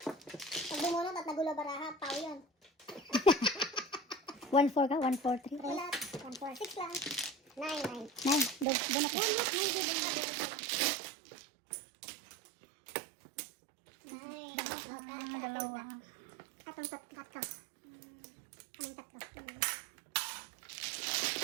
Pag bumunot at nagulo baraha, pao yun. 1-4 ka? 1-4-3? Wala. 1, 4, 6 lang. 9, 9. 9. Doon ako. Dalawa. Atong tatlo. Anong tatlo?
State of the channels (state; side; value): drops out; left; at 8.7 s